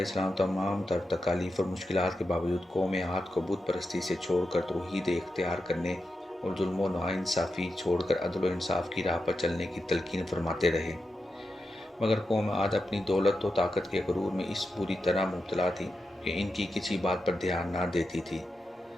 السلام تمام تر تکالیف اور مشکلات کے باوجود قوم عاد کو بت پرستی سے چھوڑ کر توحید اختیار کرنے اور ظلم و ناانصافی چھوڑ کر عدل و انصاف کی راہ پر چلنے کی تلقین فرماتے رہے۔ مگر قوم عاد اپنی دولت و طاقت کے غرور میں اس بری طرح مبتلا تھی کہ ان کی کسی بات پر دھیان نہ دیتی تھی۔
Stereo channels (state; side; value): normal; both; correlation 0.88